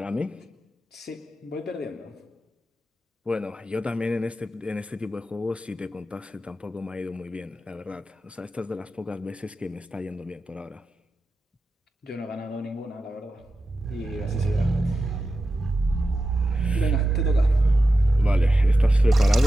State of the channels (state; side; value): normal; both; correlation 0.91